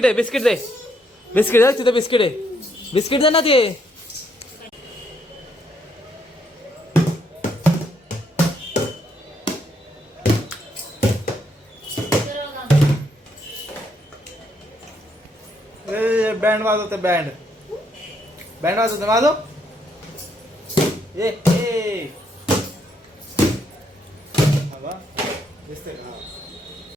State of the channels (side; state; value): both; normal; correlation 0.74